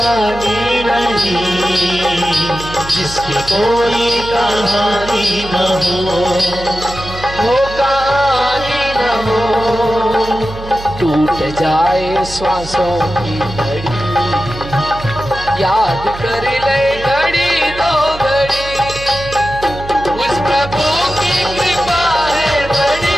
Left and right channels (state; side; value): noise; right; hum, 13 dB below the sound